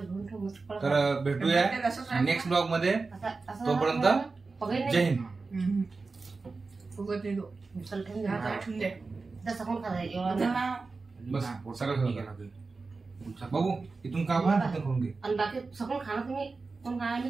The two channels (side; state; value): left; quieter; 4.0 dB